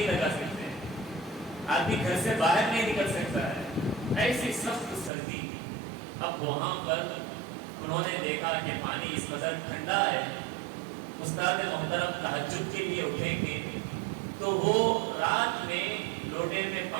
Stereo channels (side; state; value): left; drops out; at 5.1 s